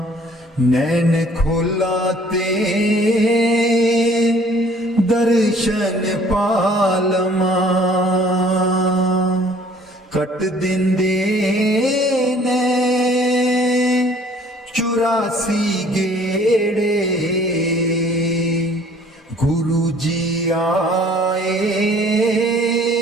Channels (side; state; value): both; normal; correlation 0.56